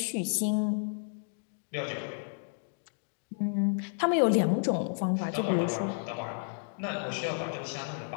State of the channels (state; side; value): silent; right; digital silence